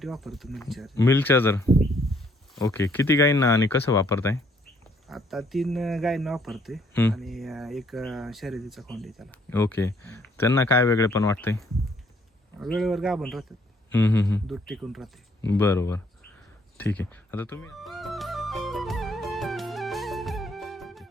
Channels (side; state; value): both; normal; correlation 0.66